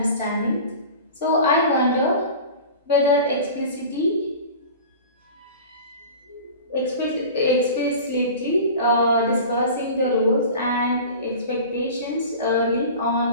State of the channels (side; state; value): both; inverted; correlation -0.37